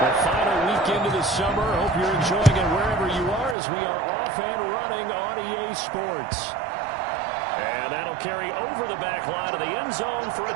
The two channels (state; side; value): drops out; left; at 3.6 s